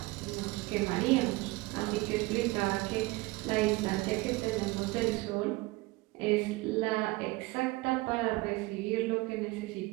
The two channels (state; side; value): quieter; left; 22.4 dB